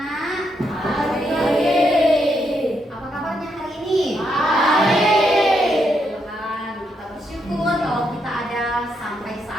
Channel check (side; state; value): both; normal; correlation 0.79